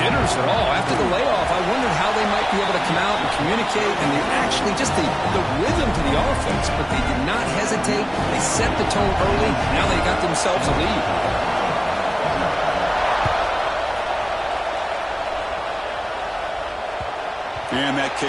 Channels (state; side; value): identical; both; correlation 1.00